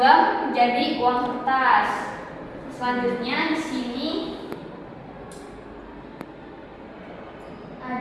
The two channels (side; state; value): both; identical; correlation 1.00